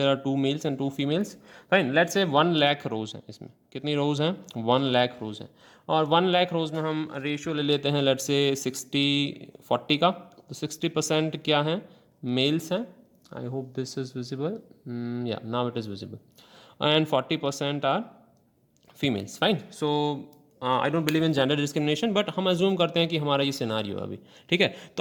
are 2 males and 2 females. Fine, let's say 1 lakh रोज़ हैं। इसमें कितनी रोज़ हैं, 1 लाख रोज़ हैं। और 1 लाख रोज़ में हम रेशियो ले लेते हैं लेट्स से 60-40 का। तो 60% क्या है, मेल्स हैं। I hope this is visible. Yeah, now it is visible. And 40% are females. Fine. So I don't believe in gender discrimination, but हम अज्यूम करते हैं कि हमारा ये सिनारियो है अभी। ठीक है,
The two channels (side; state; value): both; identical; correlation 1.00